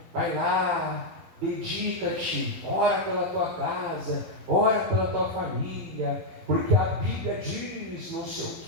vai lá, dedica-te, ora pela tua casa, ora pela tua família, porque a Bíblia diz não sei o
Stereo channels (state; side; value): late; left; 11 ms